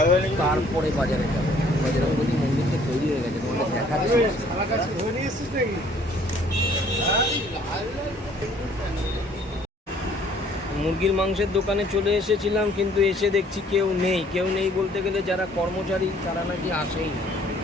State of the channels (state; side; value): normal; both; correlation 0.59